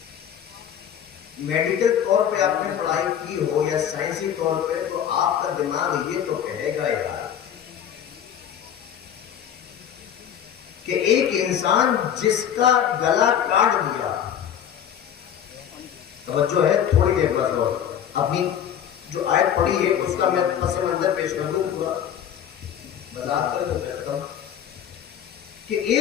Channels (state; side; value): quieter; right; 9.3 dB